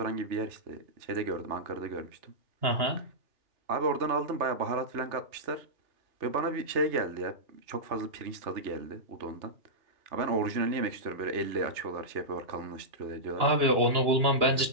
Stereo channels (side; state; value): left; late; 3.3 ms